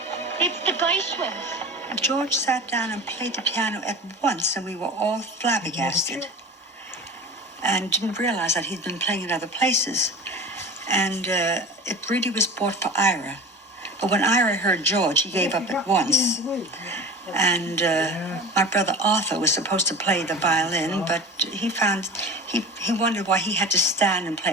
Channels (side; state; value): both; normal; correlation 0.34